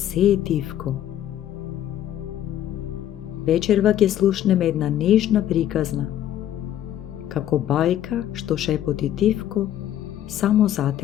е тивко. Вечерва ќе слушнеме една нежна приказна, како бајка што шепоти тивко само за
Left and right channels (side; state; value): right; quieter; 11.7 dB